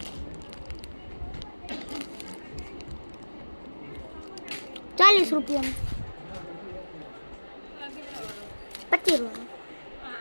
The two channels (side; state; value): both; inverted; correlation -1.00